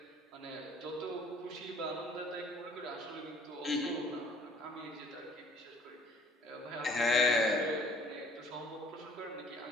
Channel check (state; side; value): normal; both; correlation 0.56